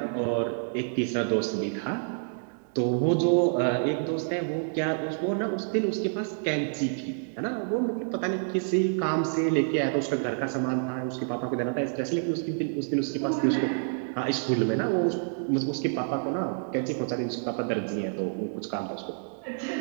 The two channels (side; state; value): left; silent; digital silence